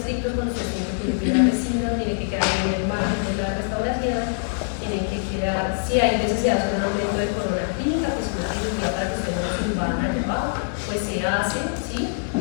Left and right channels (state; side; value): silent; right; digital silence